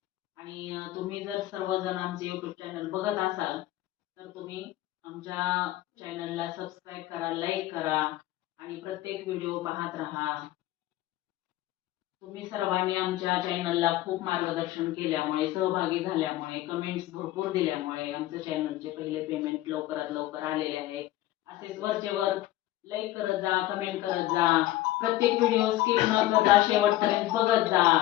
आणि तुम्ही जर सर्वजण आमचे यूट्यूब चॅनल बघत असाल तर तुम्ही आमच्या चॅनलला सबस्क्राईब करा, लाईक करा आणि प्रत्येक व्हिडिओ पाहत राहा. तुम्ही सर्वांनी आमच्या चॅनलला खूप मार्गदर्शन केल्यामुळे, सहभागी झाल्यामुळे, कमेंट्स भरपूर दिल्यामुळे आमच्या चॅनलचे पहिले पेमेंट लवकरात लवकर आलेले आहे. असेच वरचेवर लाईक करत जा, कमेंट करत जा, प्रत्येक व्हिडिओ स्किप न करता शेवटपर्यंत बघत जा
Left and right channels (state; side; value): quieter; right; 15.7 dB